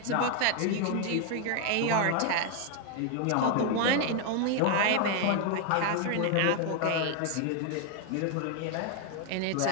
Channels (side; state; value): both; different; correlation 0.01